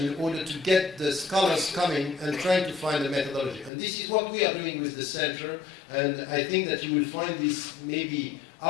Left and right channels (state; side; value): drops out; right; at 3.7 s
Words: in order to get the scholars coming and trying to find a methodology. And this is what we are doing with the center, and I think that you will find this maybe